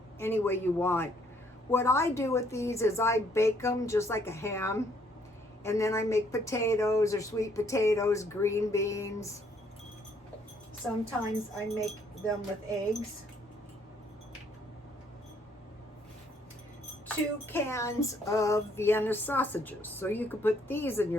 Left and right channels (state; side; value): normal; both; correlation 0.66